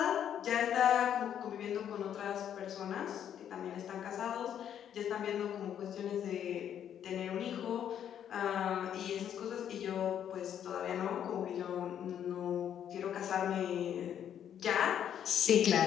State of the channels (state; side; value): quieter; right; 9.5 dB